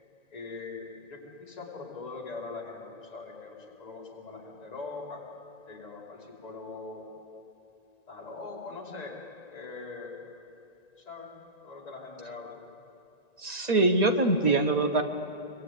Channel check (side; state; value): right; late; 1.9 ms